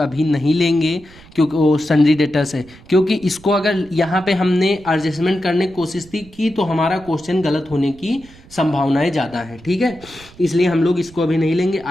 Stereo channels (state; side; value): noise; right; rumble, 23 dB below the sound